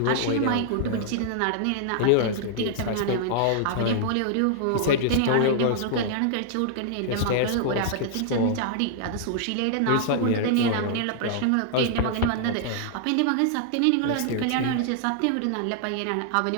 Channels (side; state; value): both; different; correlation -0.01